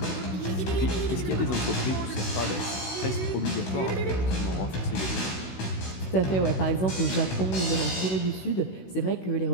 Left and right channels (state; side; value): late; right; 16 ms